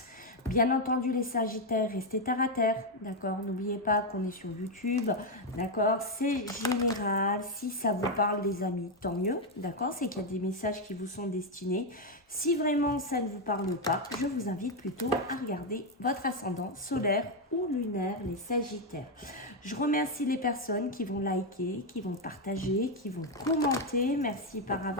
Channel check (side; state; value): both; normal; correlation 0.04